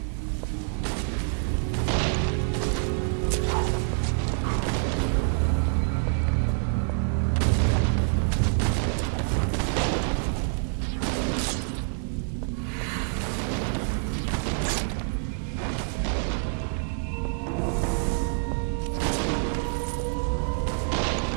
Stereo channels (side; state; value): left; silent; 60 dB below the other